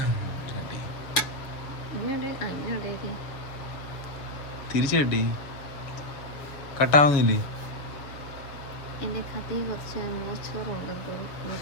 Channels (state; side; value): late; right; 7.0 ms